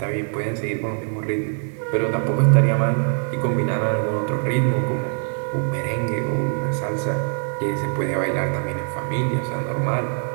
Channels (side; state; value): left; silent; 56 dB below the other